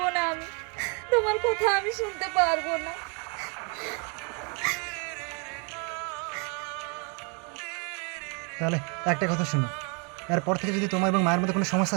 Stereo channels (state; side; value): quieter; left; 35.3 dB